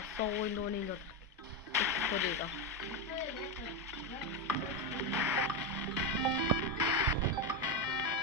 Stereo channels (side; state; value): both; normal; correlation 0.10